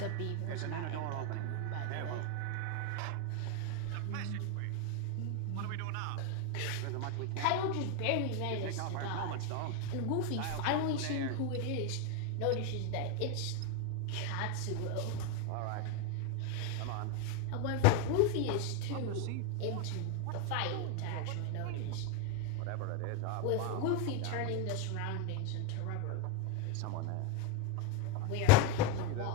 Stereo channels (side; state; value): both; different; correlation 0.01